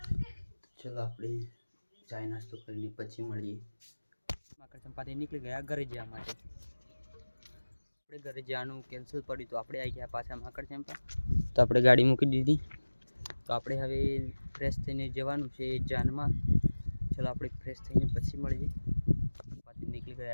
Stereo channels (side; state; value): both; inverted; correlation -1.00